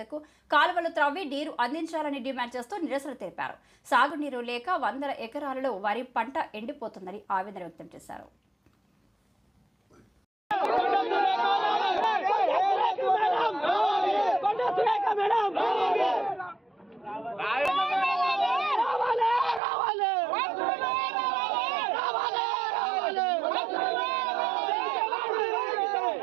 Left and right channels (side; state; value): left; drops out; at 19.6 s